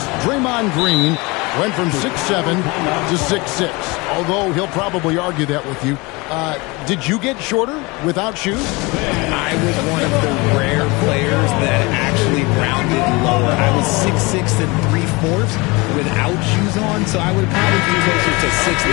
Draymond Green went from 6'7" to 6'6", although he'll probably argue that with you. Did you get shorter without shoes? I was one of the rare players that actually rounded lower. I was 6'6" and 3/4 without shoes on, so I would probably be closer to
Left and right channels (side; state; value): right; quieter; 25.3 dB